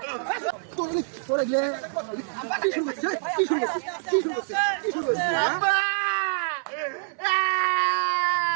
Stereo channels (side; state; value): left; silent; 61 dB below the other